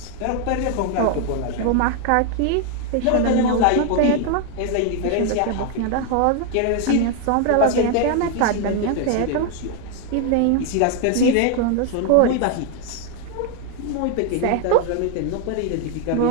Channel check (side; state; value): both; different; correlation 0.00